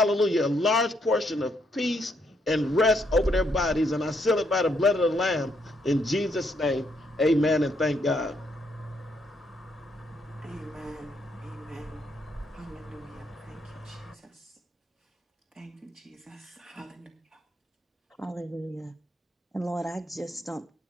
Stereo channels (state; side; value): normal; both; correlation 0.74